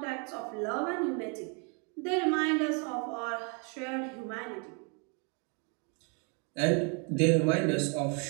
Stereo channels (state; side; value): quieter; left; 36.4 dB